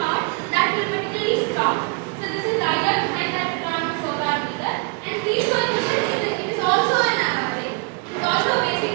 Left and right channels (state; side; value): quieter; left; 31.4 dB